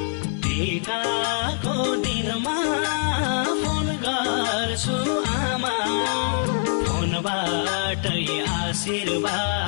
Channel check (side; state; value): right; silent; 63 dB below the other